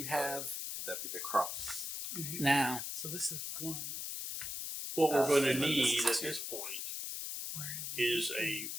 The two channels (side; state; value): left; noise; hiss, 4 dB below the sound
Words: have Could that be the cross? now. So this is one. What we're going to and then need this is at two. this point is a